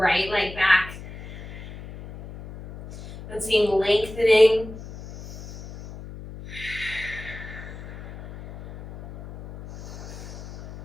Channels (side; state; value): left; noise; hum, 13 dB below the sound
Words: leg back. And seeing lengthening.